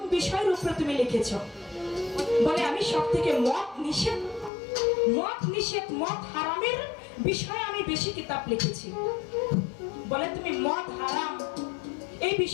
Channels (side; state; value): right; drops out; at 4.5 s